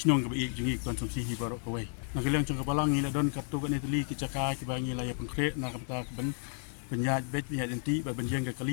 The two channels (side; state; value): right; silent; 56 dB below the other